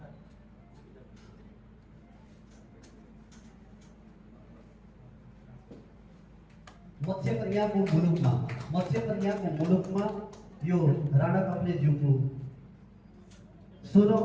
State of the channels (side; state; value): both; identical; correlation 1.00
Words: मत्स्य कन्याको मुलुकमा यो राणा काफलेज्यूको